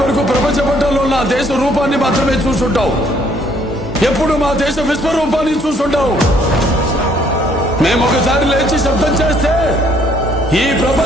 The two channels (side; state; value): both; normal; correlation 0.64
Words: వరకు ప్రపంచ పట్టణంలో నా దేశ రూపాన్ని మాత్రమే చూసుంటావు. ఎప్పుడు మా దేశ విశ్వరూపాన్ని చూసుంటావు. మేము ఒకసారి లేచి శబ్దం చేస్తే ఈ